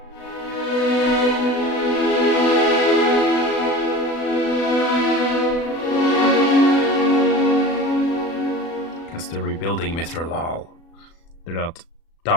Because they're rebuilding Mithral. They're not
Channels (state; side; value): late; right; 36 ms